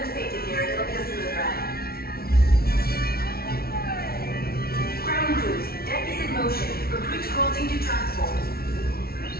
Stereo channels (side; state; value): right; late; 0.44 ms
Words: safety gear, it'll be a smooth ride. Ground crews, deck is in motion. Recruits crossing to transport.